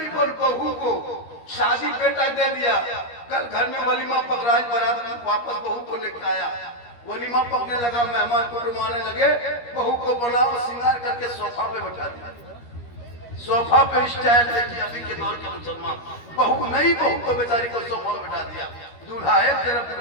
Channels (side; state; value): right; late; 13 ms